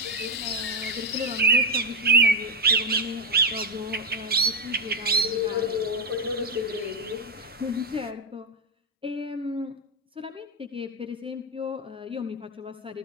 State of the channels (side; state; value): both; normal; correlation 0.05